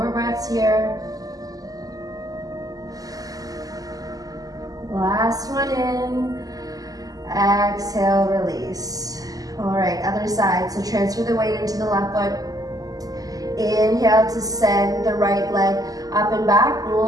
breaths here. Last one in. Exhale, release. All right, other side. So transfer the weight into the left foot. Inhale to send the right leg up and back.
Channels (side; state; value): left; late; 0.17 ms